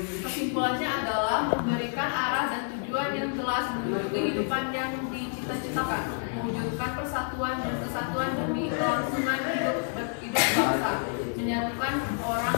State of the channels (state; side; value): silent; right; 57 dB below the other